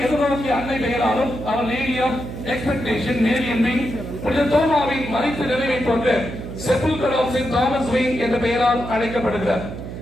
எதிர்நோக்கிய அன்னை பெயராலும் அவர் நேரியம் எக்ஸ்பெக்டேஷன் நேரியன் விங், புனித தோமாவின் மறைத்து நிறைவை போன்ற செப்புல்கர் ஆஃப் செயின்ட் தாமஸ் விங் என்ற பெயரால் அழைக்கப்படுகிறார்.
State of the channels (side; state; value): right; noise; hum, 9 dB below the sound